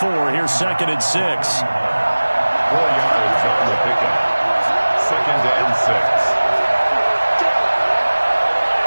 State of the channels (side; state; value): both; inverted; correlation -1.00